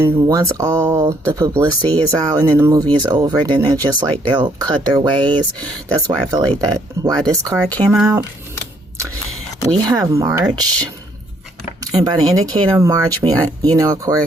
once all the publicity is out and then the movie is over, then they're just like, they'll cut their ways. That's why I feel like that, why this card came out. We have March, and by the indicator of March, we, you know, of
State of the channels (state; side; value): normal; both; correlation 0.68